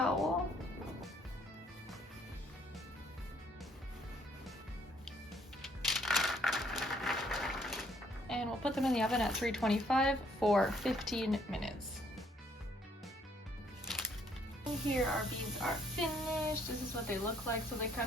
And we'll put them in the oven at 325 for 15 minutes. Here our beans are finished. This is what they look like. So they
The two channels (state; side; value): normal; both; correlation 0.65